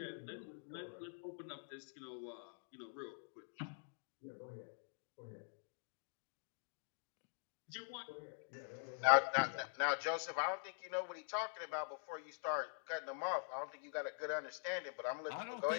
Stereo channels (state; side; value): silent; right; digital silence